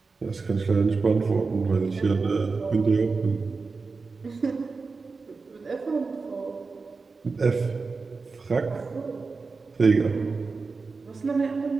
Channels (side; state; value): left; quieter; 4.3 dB